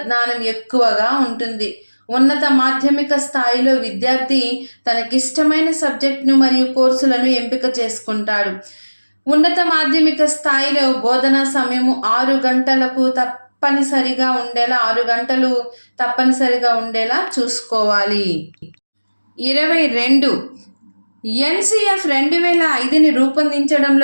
జ్ఞానం ఎక్కువగా ఉంటుంది. ఉన్నత మాధ్యమిక స్థాయిలో విద్యార్థి తనకిష్టమైన సబ్జెక్టును మరియు కోర్సులను ఎంపిక చేసుకుంటాడు. ఉన్నత మాధ్యమిక స్థాయిలో బోధనా సమయము 6 గంటలకు తప్పనిసరిగా ఉండేలా 6 గంటలు తప్పనిసరిగా ఉండేలా చూసుకోవాలి. 22 ఎన్సిఎఫ్ 2005ని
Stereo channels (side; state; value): both; inverted; correlation -1.00